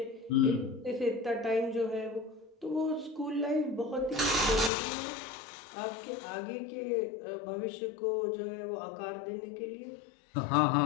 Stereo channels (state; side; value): drops out; right; at 4.7 s